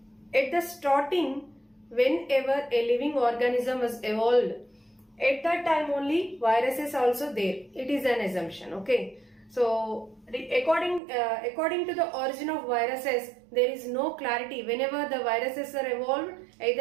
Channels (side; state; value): left; drops out; at 11.0 s